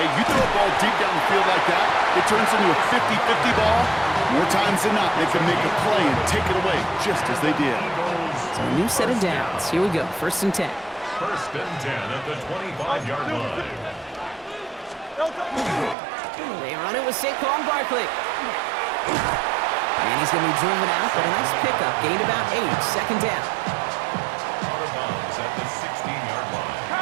you throw a ball deep down the field like that, it turns into a 50-50 ball. More times than not, they can make a play and take it away just as they did. So a new set of downs. Here we go, 1st and 10. 1st and 10 at the 25-yard line. They run it with Saquon Barkley. And he's going to be driven out, but a nice pickup. Gained about 8, 2nd down. Out of bounds at the 16-yard line.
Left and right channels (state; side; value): drops out; left; at 16.0 s